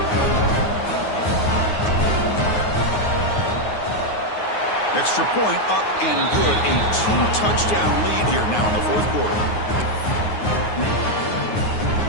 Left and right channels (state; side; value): late; right; 9.5 ms